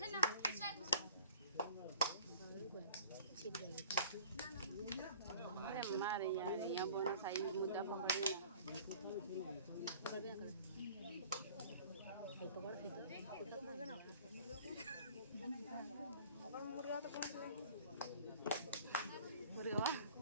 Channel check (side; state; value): both; inverted; correlation -0.49